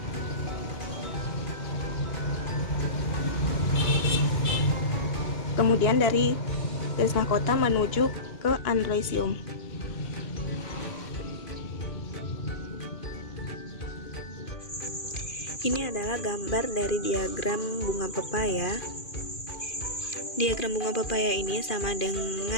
kemudian dari garis mahkota menuju ke androisium. Ini adalah gambar dari diagram bunga pepaya. Diagram bunga pepaya ini sama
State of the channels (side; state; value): right; late; 2.5 ms